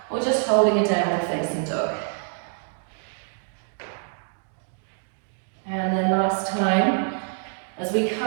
or just holding a downward facing dog. And then last time, as we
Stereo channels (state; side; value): silent; left; 61 dB below the other